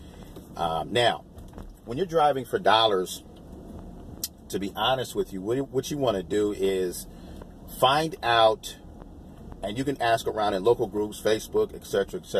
Now, when you're driving for dollars, to be honest with you, what you want to do is find out, and you can ask around in local groups, Facebook, etc.,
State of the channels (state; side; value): identical; both; correlation 1.00